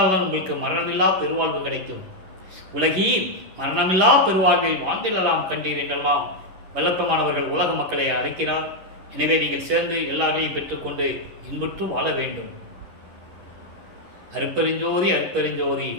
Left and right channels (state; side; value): late; left; 11 ms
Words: உங்களுக்கு மரணமில்லா பெருவாழ்வு கிடைக்கும். உலகீர் மரணமில்லா பெருவாழ்வில் வாழ்ந்திடலாம் கண்டீர் என்றெல்லாம் வல்லப்பமானவர்கள் உலக மக்களை அழைக்கிறார். எனவே நீங்கள் சேர்ந்து எல்லாரையும் பெற்றுக்கொண்டு இன்புற்று வாழ வேண்டும். அருப்பெருஞ்சோதி அருப்பெருஞ்சோதி